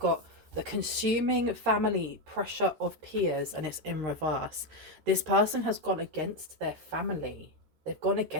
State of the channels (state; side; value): late; left; 13 ms